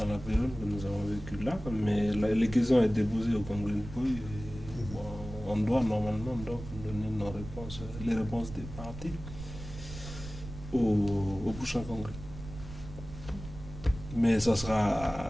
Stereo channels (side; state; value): right; noise; rumble, 12 dB below the sound